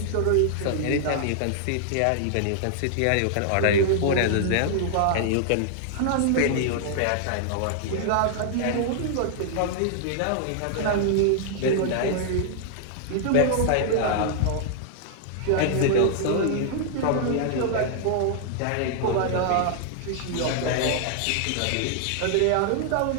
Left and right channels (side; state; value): both; different; correlation -0.01